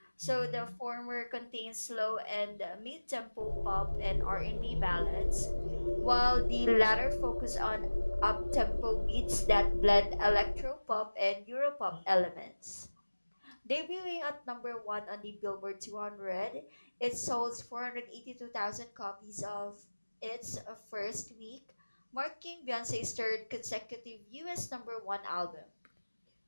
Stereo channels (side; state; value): both; inverted; correlation -1.00